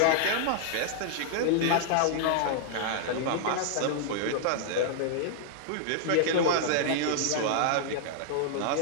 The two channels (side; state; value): both; different; correlation -0.01